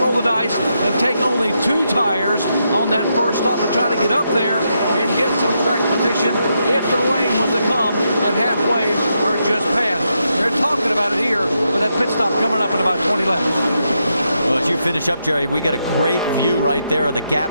the dice and take only 2 tires on that first stop to try to get up there and get some track position if the rain was to come at halfway or just past. They're talking about it here with that pit stop coming up in about 20 laps. Well, as you finish up, Jerry, we get a great view right there of the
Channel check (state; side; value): inverted; both; correlation -0.82